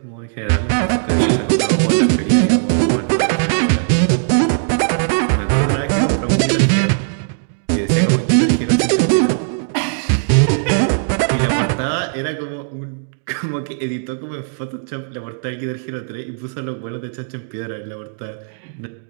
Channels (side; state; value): left; silent; digital silence